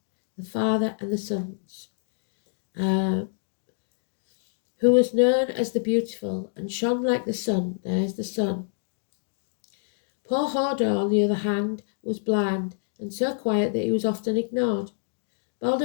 the father and the sons, who was known as the beautiful and shone like the sun. There's the sun. Poor Hodor, on the other hand, was blind and so quiet that he was often ignored.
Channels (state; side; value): silent; right; digital silence